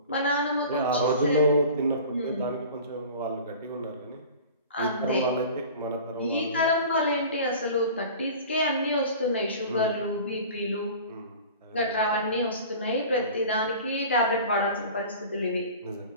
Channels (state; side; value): inverted; both; correlation -0.40